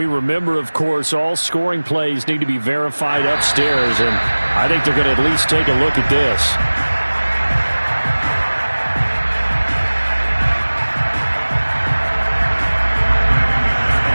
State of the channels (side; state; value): both; inverted; correlation -1.00